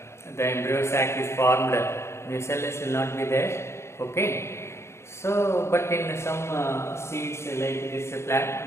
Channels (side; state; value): right; late; 0.13 ms